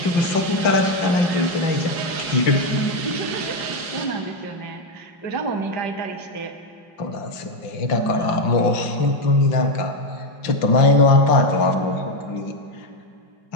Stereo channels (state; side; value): late; right; 5.8 ms